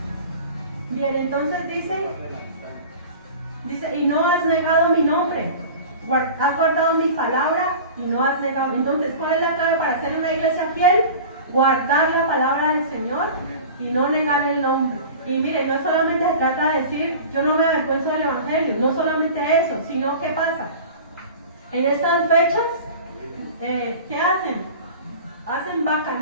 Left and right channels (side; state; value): both; inverted; correlation -0.38